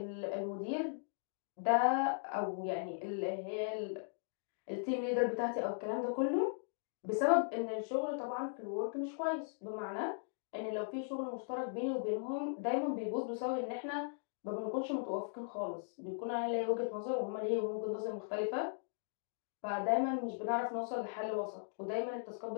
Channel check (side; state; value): right; silent; digital silence